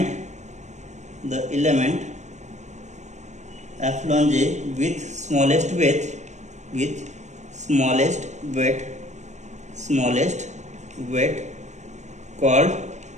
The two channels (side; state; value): left; late; 0.34 ms